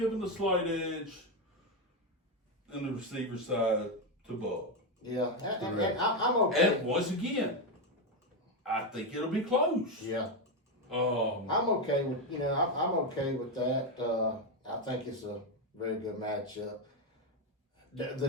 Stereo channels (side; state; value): both; normal; correlation 0.08